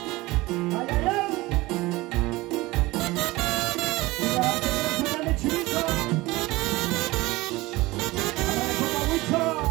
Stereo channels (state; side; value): quieter; left; 20.3 dB